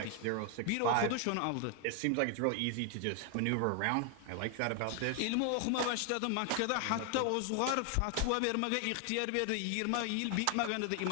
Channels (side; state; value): both; different; correlation 0.00